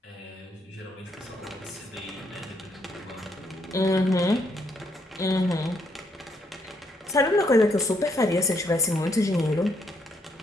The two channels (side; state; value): both; normal; correlation 0.73